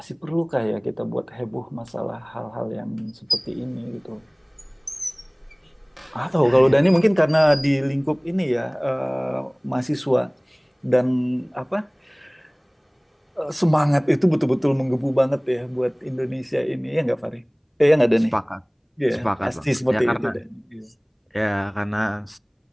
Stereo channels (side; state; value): both; identical; correlation 1.00